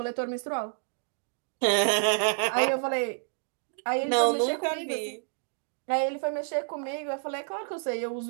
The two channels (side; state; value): left; silent; digital silence